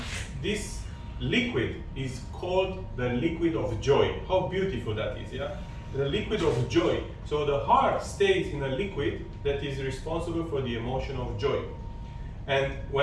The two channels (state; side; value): identical; both; correlation 1.00